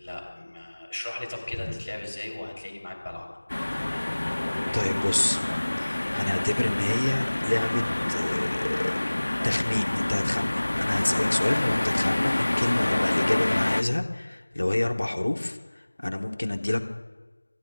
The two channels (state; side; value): inverted; both; correlation -1.00